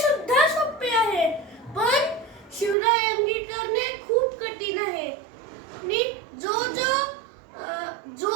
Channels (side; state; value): left; drops out; at 2.8 s